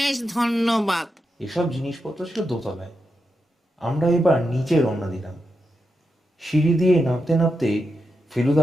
ধন্যবাদ। এসব জিনিসপত্র ছিল দোতলায়। আমরা এবার নিচে রওনা দিলাম। সিঁড়ি দিয়ে নামতে নামতে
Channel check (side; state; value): both; normal; correlation 0.87